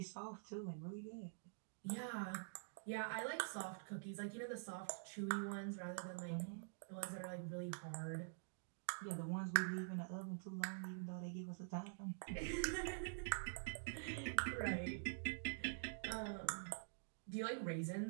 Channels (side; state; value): left; silent; digital silence